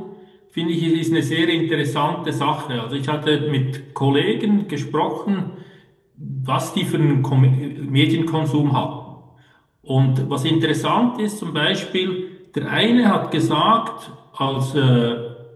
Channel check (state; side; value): identical; both; correlation 1.00